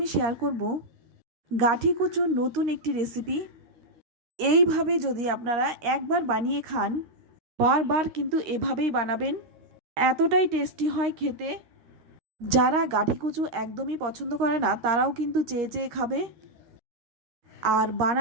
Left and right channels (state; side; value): late; left; 13 ms